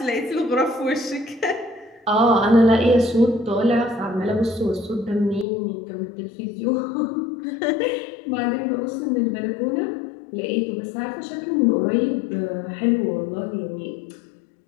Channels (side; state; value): right; drops out; at 5.5 s